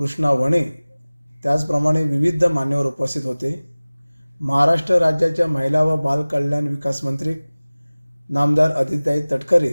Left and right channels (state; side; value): inverted; both; correlation -0.99